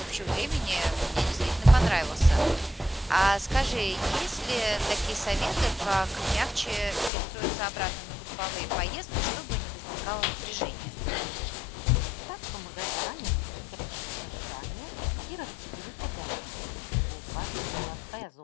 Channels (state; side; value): drops out; right; at 7.1 s